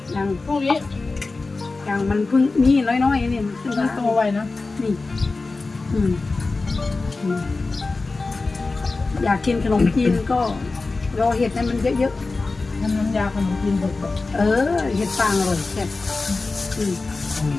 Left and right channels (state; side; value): quieter; right; 3.7 dB